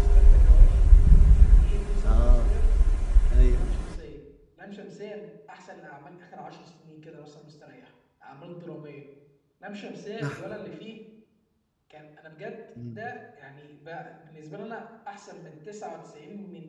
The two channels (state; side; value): identical; both; correlation 1.00